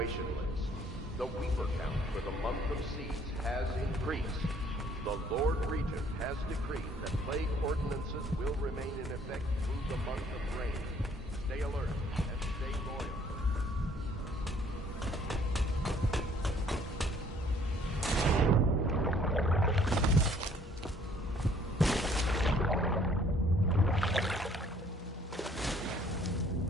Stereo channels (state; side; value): normal; both; correlation 0.60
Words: list. The Weeper count for the month of siege has increased. The Lord Regent has decreed that plague ordinances will remain in effect through the month of rain. Stay alert and stay loyal.